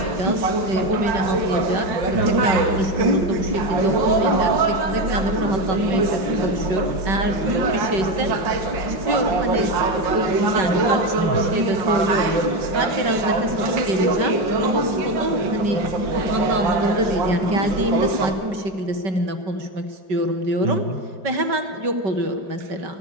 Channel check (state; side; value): late; left; 5.3 ms